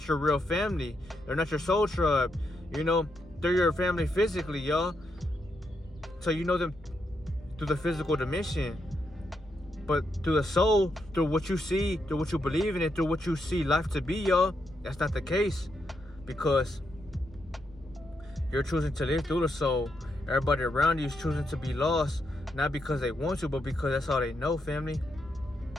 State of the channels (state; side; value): normal; both; correlation 0.82